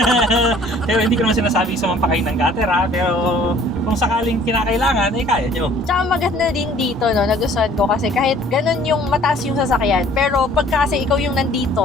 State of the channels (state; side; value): normal; both; correlation 0.54